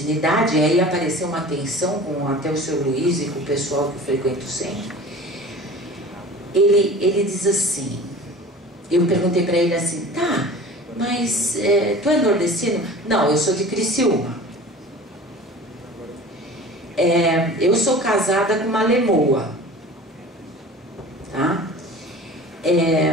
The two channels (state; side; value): normal; both; correlation 0.40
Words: E aí apareceu uma tensão com até o seu Luiz e com o pessoal que frequenta o centro. Ele diz assim, eu perguntei para ele assim, tá, mas tu é nordestino? Não, eu sou de Criciúma. Eu sou casada com uma lemoa, tá?